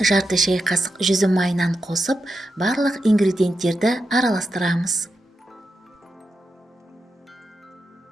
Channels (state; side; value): normal; both; correlation 0.87